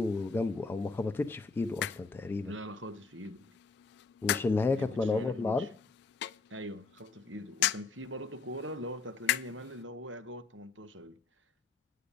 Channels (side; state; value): right; quieter; 4.4 dB